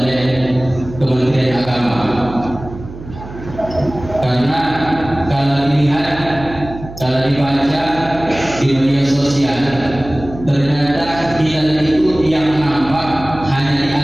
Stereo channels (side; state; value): right; noise; hum, 14 dB below the sound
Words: Kementerian Agama. Karena kalau dilihat, kalau dibaca di media sosial, ternyata hilal itu yang nampak hanya di